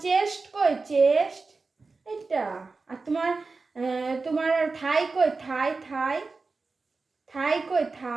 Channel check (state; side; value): quieter; left; 4.0 dB